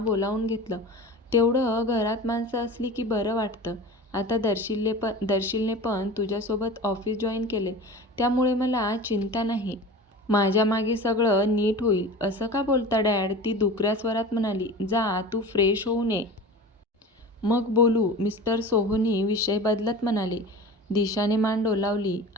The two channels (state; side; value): normal; both; correlation 0.35